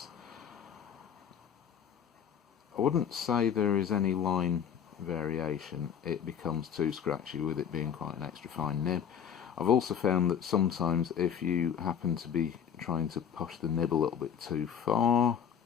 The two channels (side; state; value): right; quieter; 8.2 dB